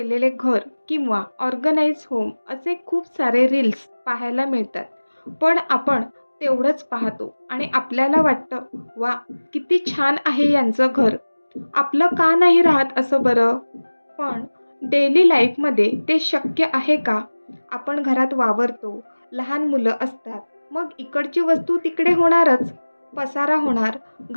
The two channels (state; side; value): inverted; both; correlation -1.00